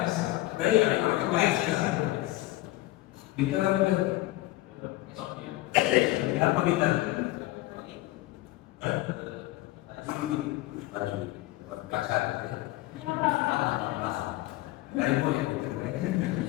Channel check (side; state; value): right; quieter; 18.0 dB